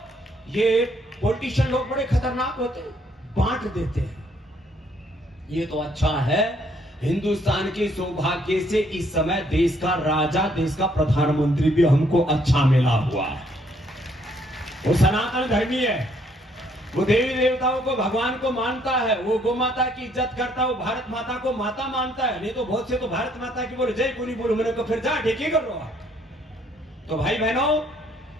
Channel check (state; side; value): normal; both; correlation 0.67